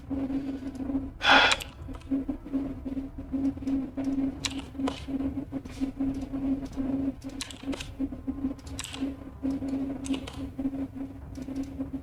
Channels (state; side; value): identical; both; correlation 1.00